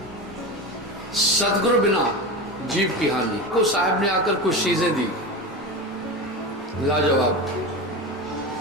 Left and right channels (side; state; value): both; normal; correlation 0.24